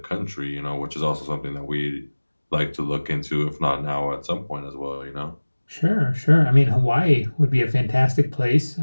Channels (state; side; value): inverted; both; correlation -1.00